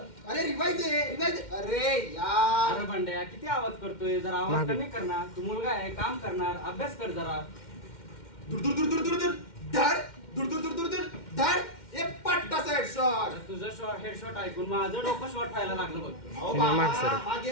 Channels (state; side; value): late; right; 2.1 ms